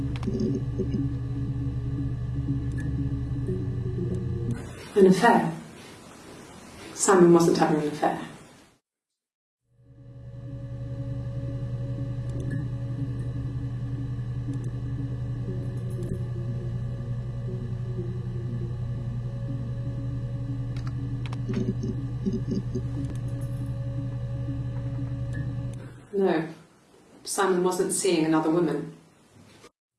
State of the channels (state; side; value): identical; both; correlation 1.00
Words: An affair. Simon wasn't having an affair. No, Simon wasn't seeing another woman.